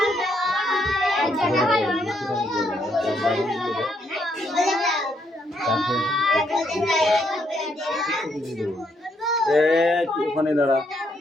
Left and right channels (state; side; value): normal; both; correlation 0.74